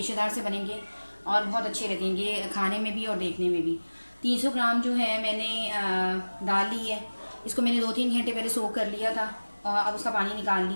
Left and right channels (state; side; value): inverted; both; correlation -1.00